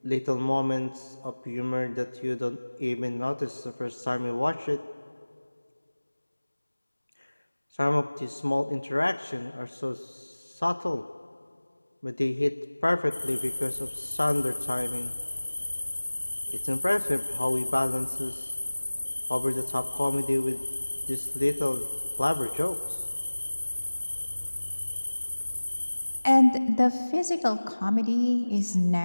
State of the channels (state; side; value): inverted; both; correlation -1.00